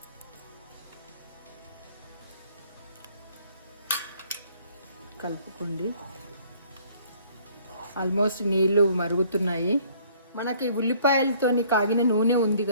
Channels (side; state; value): both; inverted; correlation -0.59